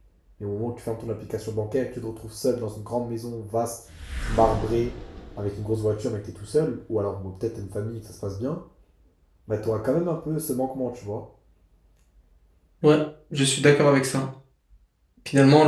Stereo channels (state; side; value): identical; both; correlation 1.00